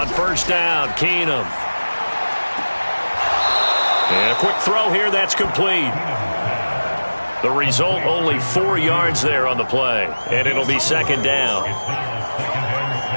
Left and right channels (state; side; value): inverted; both; correlation -1.00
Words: first down, Keenum. And a quick throw here, that's complete. The result, only 4 yards there on the play. And it'll be second down.